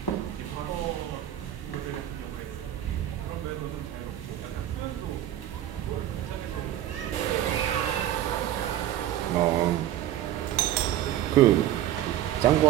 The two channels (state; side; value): quieter; left; 12.6 dB